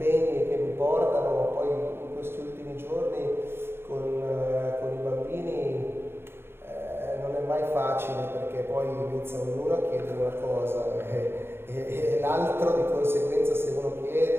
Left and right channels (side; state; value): left; late; 0.11 ms